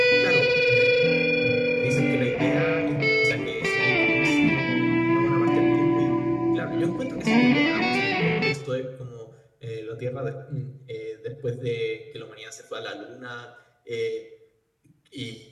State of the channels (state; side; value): identical; both; correlation 1.00